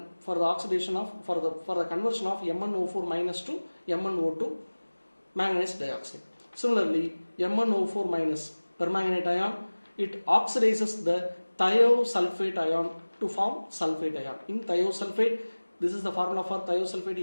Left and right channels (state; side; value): inverted; both; correlation -1.00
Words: for the oxidation of for the conversion of MnO4- to MnO2 manganese dioxide. Similarly, MnO4- permanganate ion, it oxidizes the thiosulfate ion to form sulfate ion. In thiosulfate, this is the formula for thiosulfate,